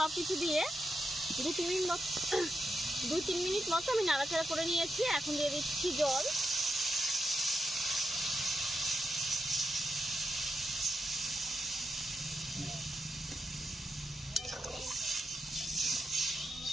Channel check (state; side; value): normal; both; correlation 0.85